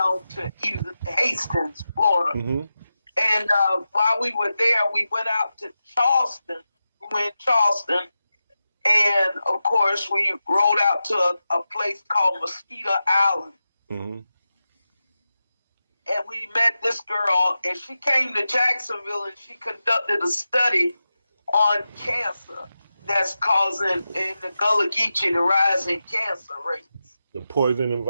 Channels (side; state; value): both; inverted; correlation -0.92